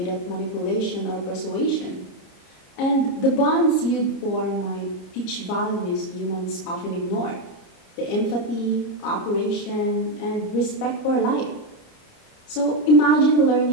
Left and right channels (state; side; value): late; right; 30 ms